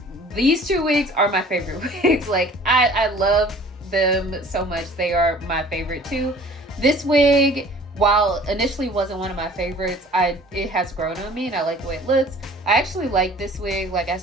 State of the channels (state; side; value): normal; both; correlation 0.49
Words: these two wigs are my favorite wigs. Like, I love them so much. They are my favorite too. This wig, while initially wasn't one of my favorites, it has grown on me and I like the way it looks. I actually like this wig. Like I